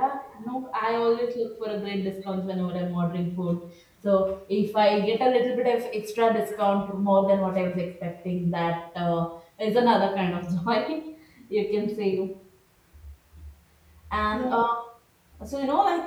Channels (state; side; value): identical; both; correlation 1.00